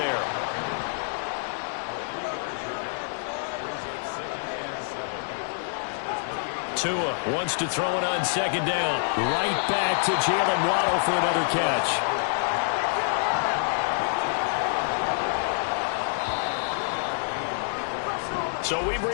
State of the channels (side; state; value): right; silent; digital silence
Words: Tua wants to throw it on second down. Right back to Jalen Waddle for another catch. So we've